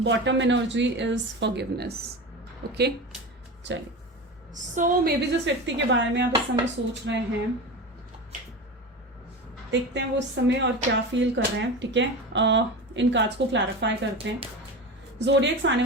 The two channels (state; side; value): normal; both; correlation 0.27